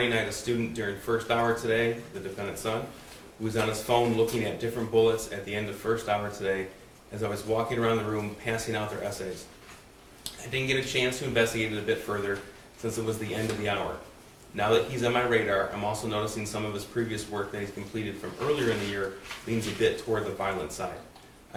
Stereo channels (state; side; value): identical; both; correlation 1.00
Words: I had a student during first hour today," the defendant's son, "who was on his phone looking at different bullets at the end of first hour today as I was walking around the room passing out their essays. I didn't get a chance to investigate it a bit further since it was the end of the hour. Now that he's on my radar, I'm also noticing some of his previous work that he's completed from earlier in the year leans a bit toward the violent side.